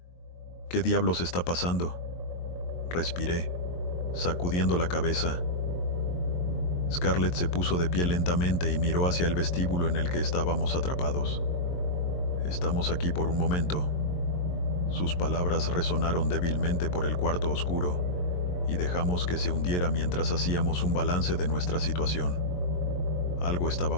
«¿Qué diablos está pasando?», respiré, sacudiendo la cabeza. Scarlett se puso de pie lentamente y miró hacia el vestíbulo en el que estábamos atrapados. «Estamos aquí por un momento». Sus palabras resonaron débilmente por el cuarto oscuro, y dejamos que se hundiera mientras hacíamos un balance de nuestra situación. Algo estaba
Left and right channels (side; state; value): right; late; 22 ms